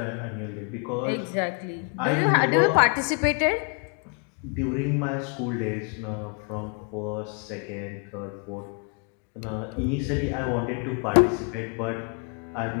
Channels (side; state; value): right; quieter; 38.1 dB